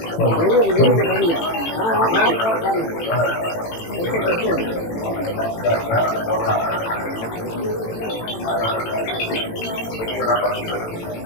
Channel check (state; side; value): late; right; 18 ms